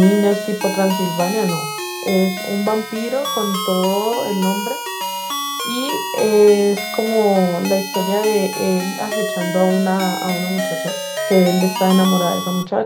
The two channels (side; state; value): both; identical; correlation 1.00